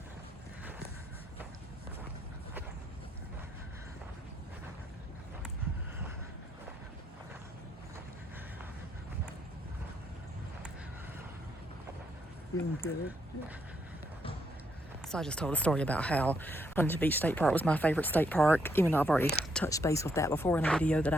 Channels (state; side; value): normal; both; correlation 0.75